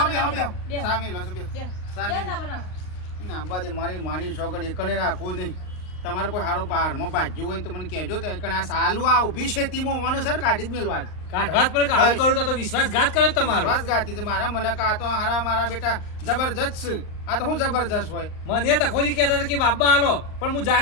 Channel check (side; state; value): right; late; 39 ms